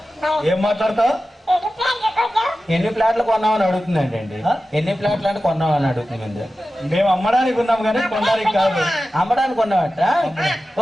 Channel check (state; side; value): normal; both; correlation 0.94